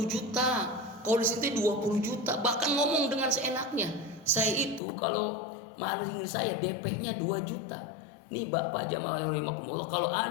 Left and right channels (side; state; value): right; drops out; at 4.8 s